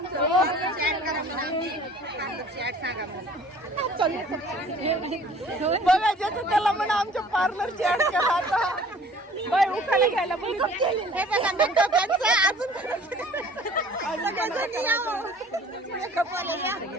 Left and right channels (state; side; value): normal; both; correlation 0.50